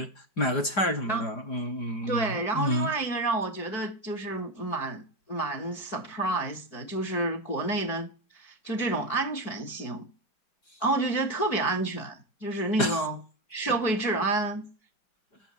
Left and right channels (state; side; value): late; right; 4.9 ms